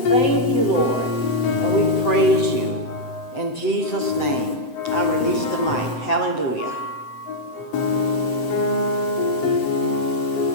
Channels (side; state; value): right; late; 7.8 ms